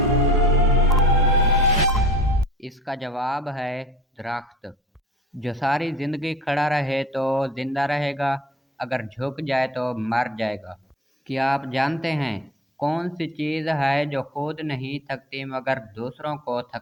اس کا جواب ہے درخت۔ جو ساری زندگی کھڑا رہے تو زندہ رہے گا، اگر جھک جائے تو مر جائے گا۔ کیا آپ جانتے ہیں کون سی چیز ہے جو خود نہیں تھکتی مگر دوسروں کو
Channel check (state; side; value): normal; both; correlation 0.44